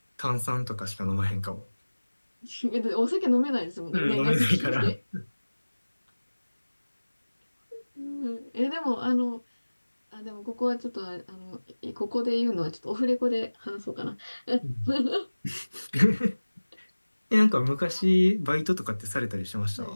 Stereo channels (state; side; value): inverted; both; correlation -1.00